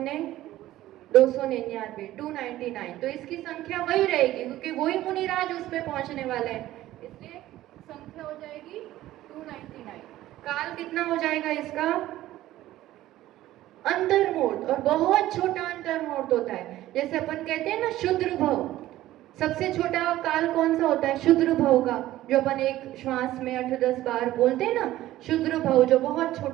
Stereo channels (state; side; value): quieter; left; 15.0 dB